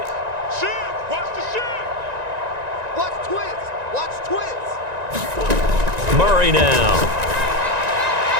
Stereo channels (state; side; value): late; left; 1.9 ms